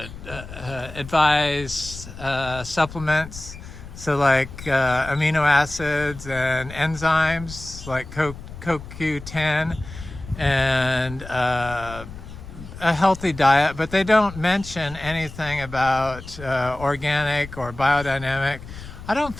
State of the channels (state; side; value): noise; left; rumble, 14 dB below the sound